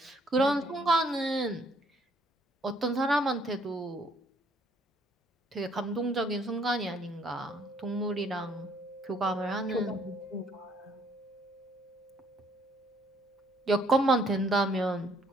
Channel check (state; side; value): normal; both; correlation 0.64